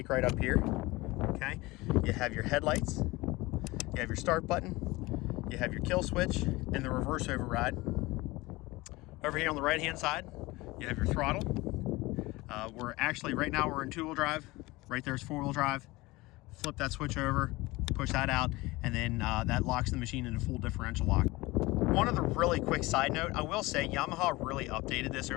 right up here, okay? You have your headlights, you have your start button, you have your kill switch, and the reverse override. Over here on the right-hand side, you have your throttle. Right now we're in two-wheel drive. Right there's four-wheel drive. Flip that switch over, push that out, and then that locks the machine into full differential lock. One other really quick side note, I will say Yamaha really updated this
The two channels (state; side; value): quieter; right; 21.1 dB